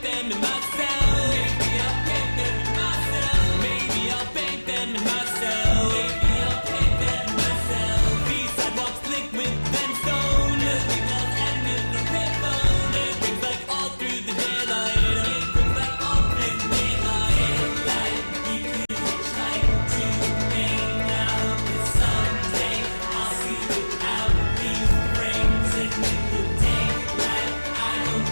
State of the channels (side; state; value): both; inverted; correlation -1.00